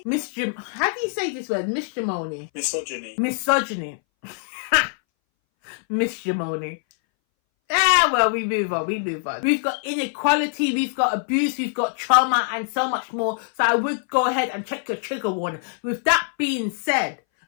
How do you say this word? Misogyny. Misogyny. Missimony. Well, we move on. We've got inequality, we've got abuse, we've got trauma, and so much more. So I would go ahead and check your trigger warning. With that being said,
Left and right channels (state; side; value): silent; right; 61 dB below the other